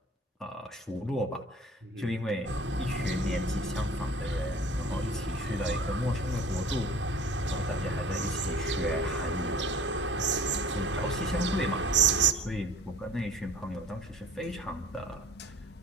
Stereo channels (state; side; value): normal; both; correlation 0.46